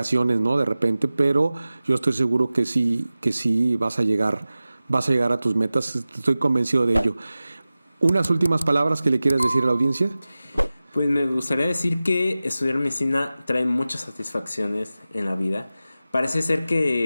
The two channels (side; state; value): both; inverted; correlation -0.96